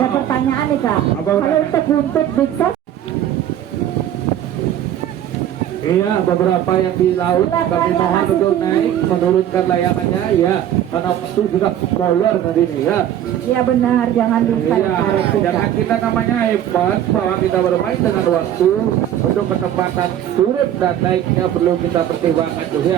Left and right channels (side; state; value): left; quieter; 11.0 dB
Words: pertanyaan nih kak. Apa Kalau untuk buntut Big Sos, iya beberapa yang di laut kami mohon untuk naik menurunkan layangannya ya, karena waktu sudah molor tadi nih ya. iya benar, jangan lupa Iya, karet tuh, jangan kak. kita namanya hebat bahwa kita bermain dengan waktu. Untuk kecepatan turun dan naiknya perlu kita pertimbangkan